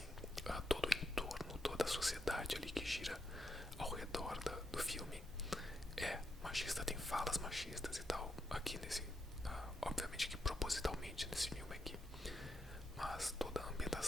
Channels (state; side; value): normal; both; correlation 0.82